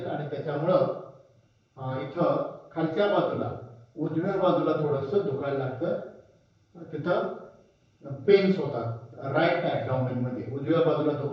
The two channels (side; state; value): both; identical; correlation 1.00